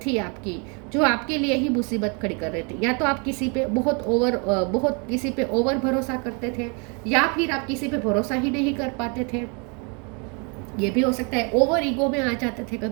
थी आपकी जो आपके लिए ही मुसीबत खड़ी कर रही थी। या तो आप किसी पे बहुत किसी पे ओवर भरोसा करते थे, या फिर आप किसी पे भरोसा ही नहीं कर पाते थे। ये भी हो सकता है ओवर ईगो में आ जाते थे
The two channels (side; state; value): left; quieter; 34.5 dB